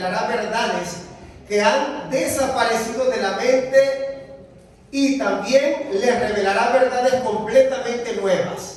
verdades que han desaparecido de la mente y también les revelará verdades completamente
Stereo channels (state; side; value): identical; both; correlation 1.00